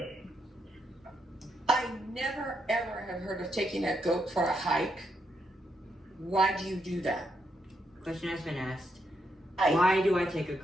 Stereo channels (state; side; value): normal; both; correlation 0.79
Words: I never ever have heard of taking a goat for a hike. Why do you do that? Question has been asked, Hike. why do I take a